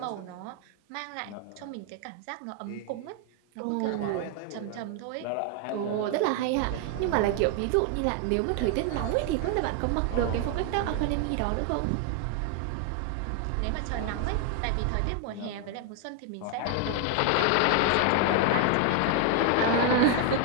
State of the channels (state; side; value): different; both; correlation 0.00